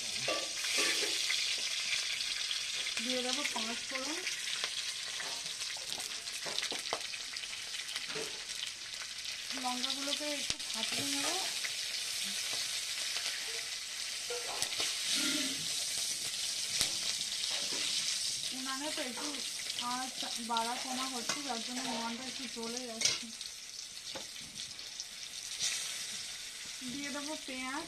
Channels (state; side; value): identical; both; correlation 1.00